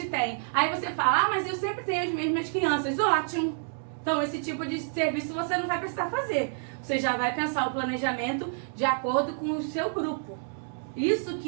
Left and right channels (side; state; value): left; silent; digital silence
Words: tem. Aí você fala, mas eu sempre tenho as mesmas crianças. Ótimo! Então esse tipo de serviço você não vai precisar fazer. Você já vai pensar o planejamento de acordo com o seu grupo. Isso